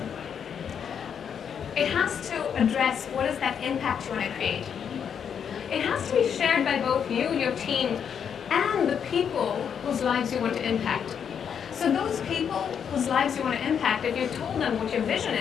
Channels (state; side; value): quieter; right; 7.7 dB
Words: It has to address what is that impact you want to create. It has to be shared by both you, your team, and the people whose lives you want to impact. So those people whose lives you want to impact, if you told them what your vision